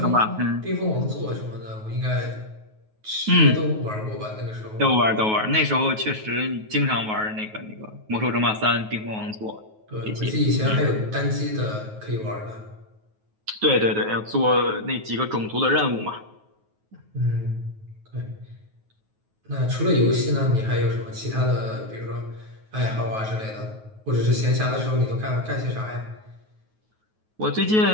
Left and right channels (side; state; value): left; late; 9.3 ms